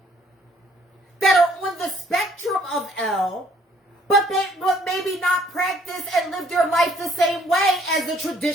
that are on the spectrum of L, but maybe not practice and live their life the same way as the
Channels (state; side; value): normal; both; correlation 0.62